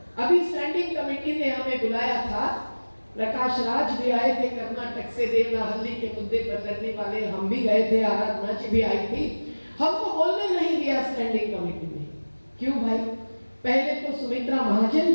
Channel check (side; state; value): both; inverted; correlation -1.00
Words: अभी स्टैंडिंग कमेटी ने हमें बुलाया था, प्रकाश राज भी आए थे कर्नाटक से, देवनाहल्ली के मुद्दे पर लड़ने वाले, हम भी गए थे, आराधना जी भी आई थी। हमको बोलने नहीं दिया स्टैंडिंग कमेटी में। क्यों भाई? पहले तो सुमित्रा महाजन